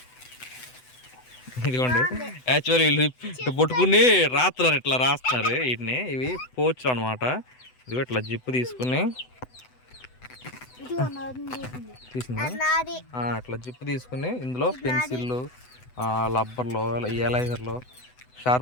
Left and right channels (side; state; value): right; late; 8.0 ms